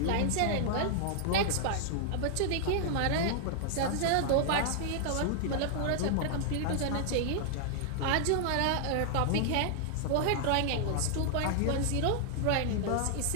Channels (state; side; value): different; both; correlation -0.01